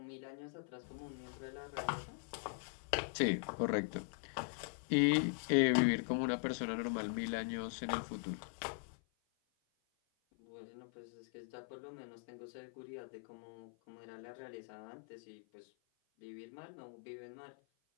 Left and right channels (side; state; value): right; silent; 50 dB below the other